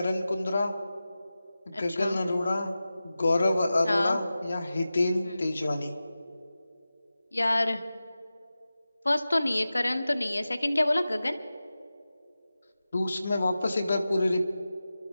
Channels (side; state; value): both; inverted; correlation -0.95